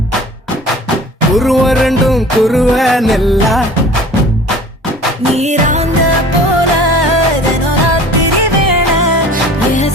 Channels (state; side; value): normal; both; correlation 0.44